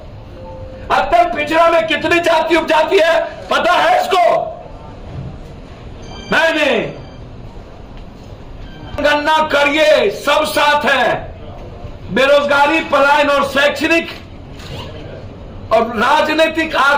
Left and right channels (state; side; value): identical; both; correlation 1.00